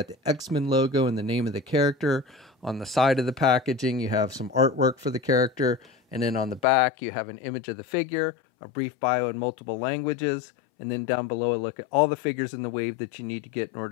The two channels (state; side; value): drops out; right; at 6.7 s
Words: the X-Men logo and the name of the character. On the side of the packaging you have some artwork for the character. And then on the back you have an image of the figure, a brief bio in multiple languages, and then down below a look at all the figures in the wave that you need to get in